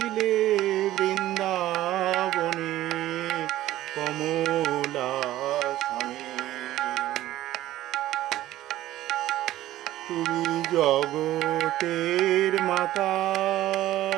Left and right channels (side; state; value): left; quieter; 14.7 dB